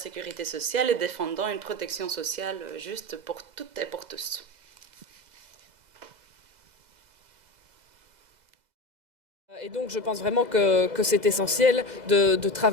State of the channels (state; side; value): late; left; 2.0 ms